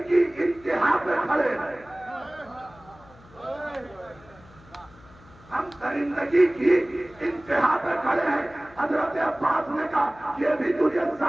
کی انتہا پہ کھڑے ہیں، ہم درندگی کی انتہا پہ کھڑے ہیں۔ حضرت عباس نے کہا یہ بھی تجھے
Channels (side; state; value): left; noise; hum, 24 dB below the sound